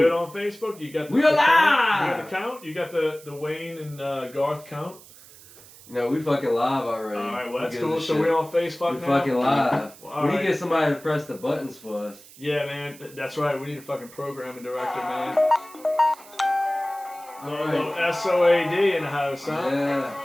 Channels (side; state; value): right; noise; hiss, 21 dB below the sound